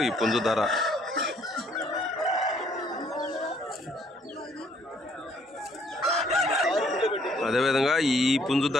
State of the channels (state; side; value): normal; both; correlation 0.65